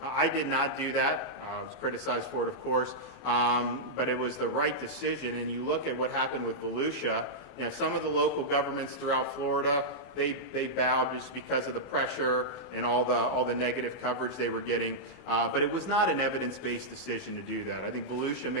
I did not do that. I was criticized for it, of course, but it was the right decision. And you look at what happened with Volusia. Some of the local governments throughout Florida, they bowed just because of the pressure and all the negative coverage they were getting. But it was not an evidence-based decision to do that. I think Volusia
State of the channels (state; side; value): late; right; 24 ms